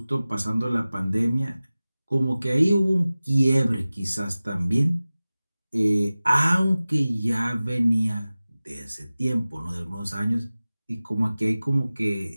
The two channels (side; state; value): both; inverted; correlation -0.97